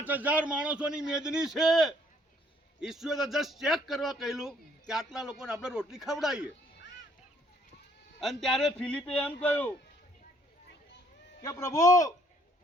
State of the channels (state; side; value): normal; both; correlation 0.65